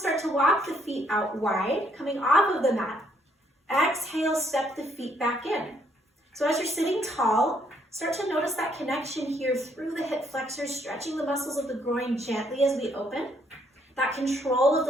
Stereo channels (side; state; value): both; normal; correlation 0.69